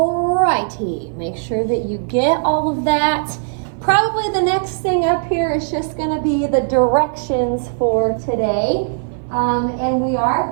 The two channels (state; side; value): silent; left; 60 dB below the other